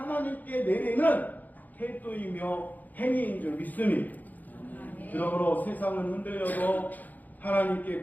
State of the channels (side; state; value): right; late; 0.082 ms